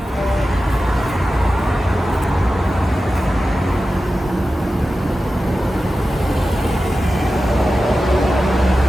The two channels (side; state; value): both; normal; correlation 0.93